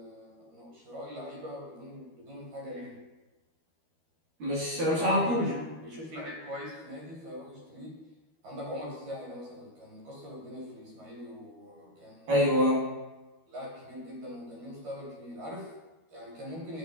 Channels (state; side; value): late; left; 12 ms